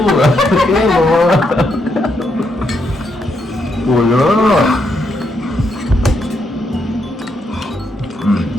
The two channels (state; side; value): normal; both; correlation 0.78